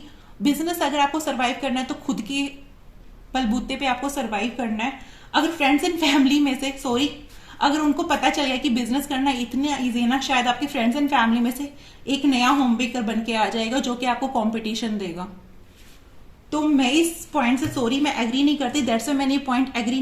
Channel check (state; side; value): identical; both; correlation 1.00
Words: बिजनेस अगर आपको सर्वाइव करना है तो खुद के बलबूते पे आपको सर्वाइव करना है। अगर फ्रेंड्स एंड फैमिली में से, सॉरी, अगर उनको पता चल गया कि बिजनेस करना इतना इजी है ना, शायद आपके फ्रेंड्स एंड फैमिली में से एक नया होम बेकर बन के आ जाएगा जो कि आपको कंपटीशन देगा। तो मैं इस पॉइंट से, सॉरी, मैं एग्री नहीं करती, दैट्स व्हाई मैंने ये पॉइंट एग्री